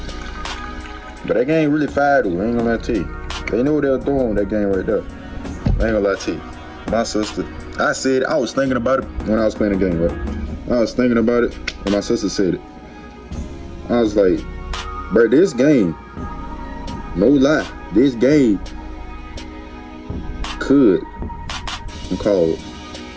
But that game really fire though, I ain't gonna lie to you. They know what they're doing with that game right there. I ain't gonna lie to you. My sister, I was thinking about it when I was playing the game, right? I was thinking about it when my sister said it. I was like, bro, this game, no lie, this game could cause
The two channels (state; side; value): identical; both; correlation 1.00